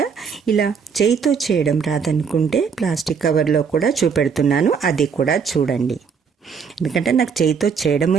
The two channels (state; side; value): quieter; left; 6.2 dB